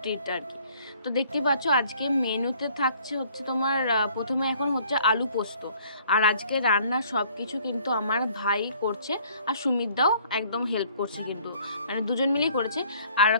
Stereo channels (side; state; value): both; inverted; correlation -0.58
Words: ট্রিট আর কি। তো দেখতেই পাচ্ছ আজকে মেনুতে থাকছে হচ্ছে তোমার প্রথমে এখন হচ্ছে আলু পোস্ত। আর আজকে রান্না সব কিছু কিন্তু আমার ভাই করছে, আর সুমিতদাও একদম হেল্প করছে, কিন্তু মানে দুজন মিলেই করেছে। আর